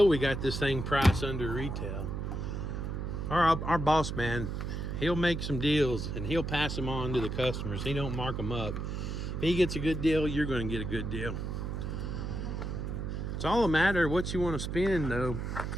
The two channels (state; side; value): noise; right; hum, 4 dB below the sound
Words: we got this thing priced under retail. Our boss man, he'll make some deals and he'll pass them on to the customers. He don't mark them up. If he gets a good deal, you're going to get a good deal. It's all a matter of what you want to spend, though.